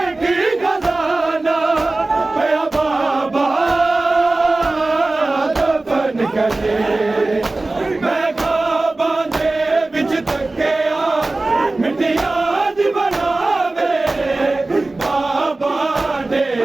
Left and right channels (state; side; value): quieter; left; 3.0 dB